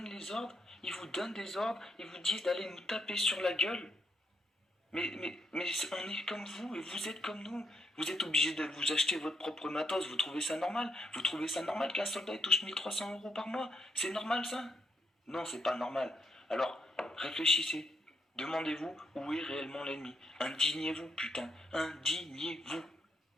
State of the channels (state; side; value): normal; both; correlation 0.77